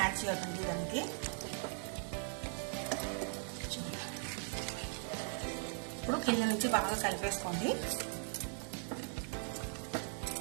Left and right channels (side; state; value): left; silent; 52 dB below the other